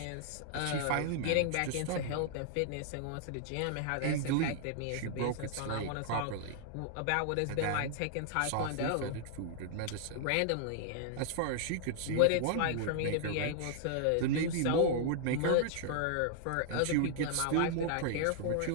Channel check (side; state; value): both; different; correlation -0.01